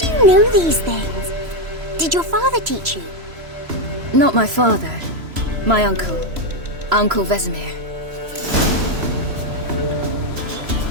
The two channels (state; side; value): late; left; 3.0 ms